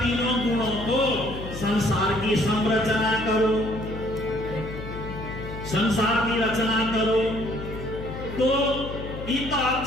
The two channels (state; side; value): noise; left; hum, 9 dB below the sound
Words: गुणों को संसार की संरचना करो, संसार की रचना करो। तो इत